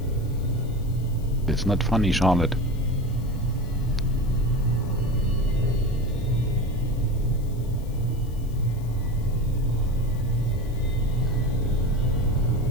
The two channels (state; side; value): noise; left; hiss, 25 dB below the sound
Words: It's not funny, Charlotte.